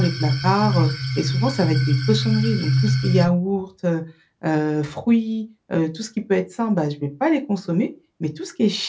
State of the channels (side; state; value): both; identical; correlation 1.00